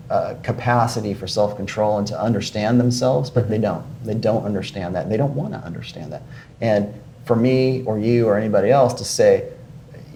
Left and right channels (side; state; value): both; identical; correlation 1.00